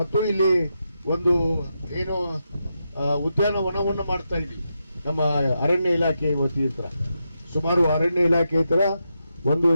ಇಲ್ಲಿ ಒಂದು ಏನು ಉದ್ಯಾನವನವನ್ನು ಮಾಡ್ತಾ ಇದ್ದೀವಿ ನಮ್ಮ ಅರಣ್ಯ ಇಲಾಖೆ ವತಿಯಿಂದ. ಸುಮಾರು ಅರಣ್ಯ ಇಲಾಖೆ ತರ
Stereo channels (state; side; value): inverted; both; correlation -0.86